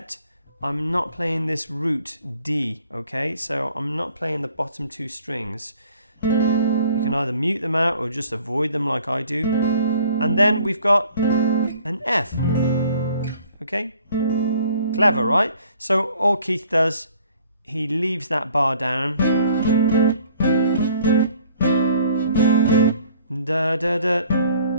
I'm not playing this root D, okay? So I'm not playing the bottom two strings. You can either mute them out or just avoid them like I do. And then we've got an F, okay? Clever, right? So all Keith does, he leaves that bar down. Da, da, da.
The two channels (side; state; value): both; inverted; correlation -0.58